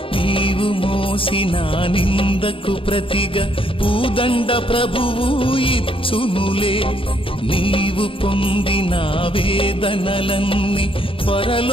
నీవు మోసిన నిందకు ప్రతిగా పూదండ ప్రభువు ఇచ్చునులే. నీవు పొందిన వేదనలన్నీ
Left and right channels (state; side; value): late; right; 0.26 ms